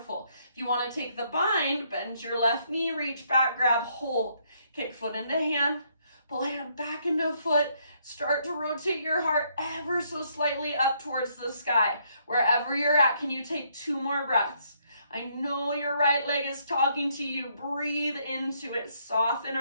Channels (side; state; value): both; inverted; correlation -0.71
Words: If you want to take the bind, bend your left knee, reach back, grab, hold. Kick foot into hand, pull hand back into foot. Start to rotate your heart ever so slightly up towards the sky. Wherever you're at, can you take 2 more breaths? I know your right leg is talking to you. Breathe into it, soften